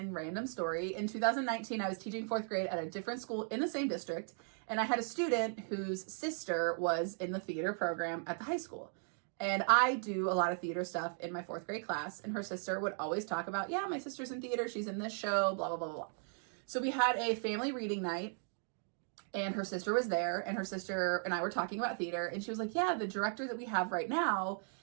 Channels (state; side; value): silent; left; 53 dB below the other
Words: random story. In 2019, I was teaching fourth grade at a different school in the same district, and I had a student whose sister was in the theater program at the high school. And I do a lot of theater stuff in my fourth grade class, and her sister would always talk about, yeah, my sister's in theater, she's in this show, blah, blah, blah, blah. So we had a family reading night, and her sister was there, and her sister and I were talking about theater, and she was like, yeah, the director that we have right now